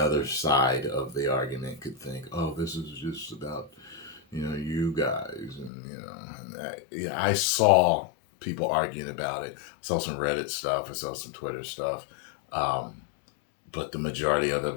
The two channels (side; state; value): right; drops out; at 5.7 s